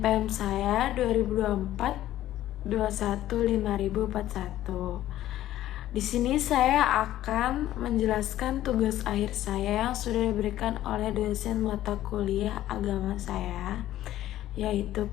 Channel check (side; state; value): right; quieter; 13.6 dB